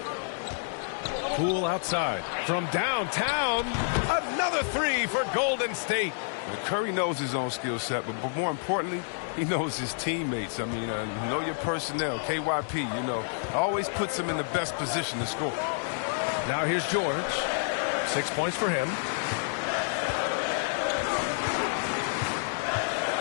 Poole outside. From downtown. Another 3 for Golden State. Curry knows his own skill set, but more importantly, he knows his teammates. I mean, know your personnel. KYP, you know, always puts him in the best position to score. Now here's George. 6 points for him.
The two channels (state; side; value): silent; right; digital silence